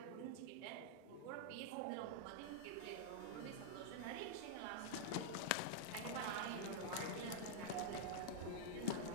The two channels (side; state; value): both; different; correlation -0.01